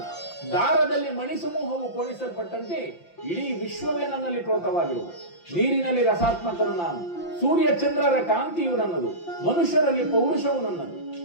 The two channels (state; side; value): late; right; 5.8 ms